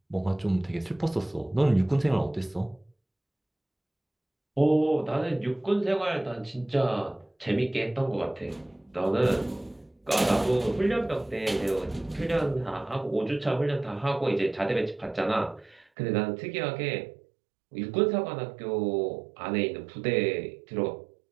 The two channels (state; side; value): drops out; left; at 15.9 s